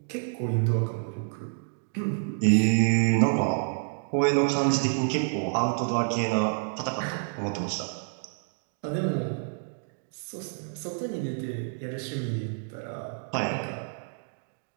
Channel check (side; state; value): left; silent; digital silence